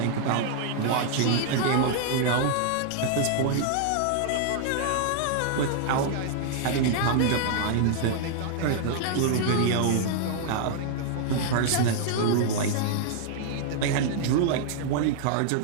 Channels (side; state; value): both; different; correlation -0.01